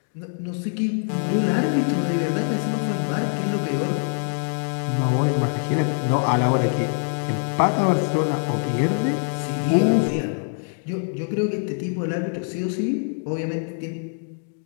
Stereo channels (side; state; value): right; silent; 57 dB below the other